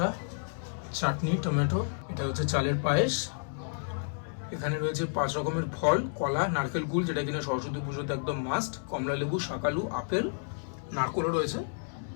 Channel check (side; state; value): right; silent; 57 dB below the other